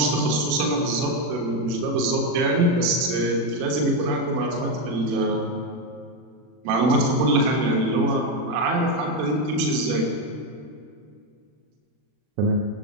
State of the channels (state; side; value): late; left; 40 ms